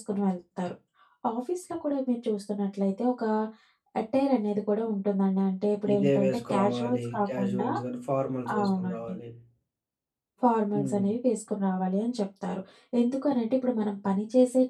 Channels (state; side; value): identical; both; correlation 1.00